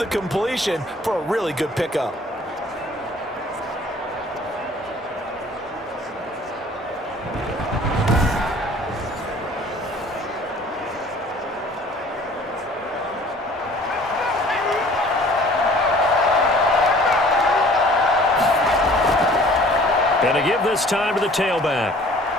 completion for a really good pickup. And to give this time to the tailback.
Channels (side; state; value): both; normal; correlation 0.51